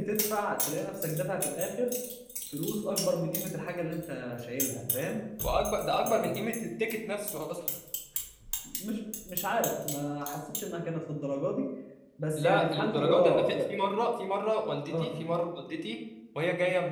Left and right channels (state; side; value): identical; both; correlation 1.00